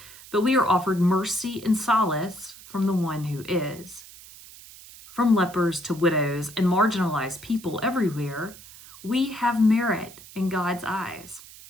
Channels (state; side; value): noise; right; hiss, 19 dB below the sound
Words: but we are offered mercy and solace from the one who is. From lepers to widows and marginalized people everywhere, we have merit in God's eyes.